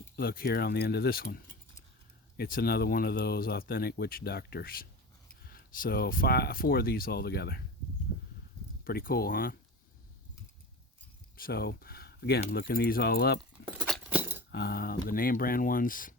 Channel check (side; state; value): both; normal; correlation 0.31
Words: look here on the end of this one. It's another one of those Authentic Witch Doctors. So 4 of these all together. Pretty cool, huh? So again, looking these all up, the name brand ones,